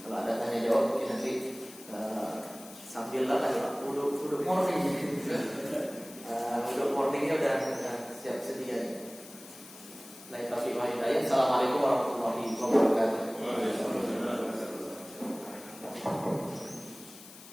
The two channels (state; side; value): noise; left; hiss, 18 dB below the sound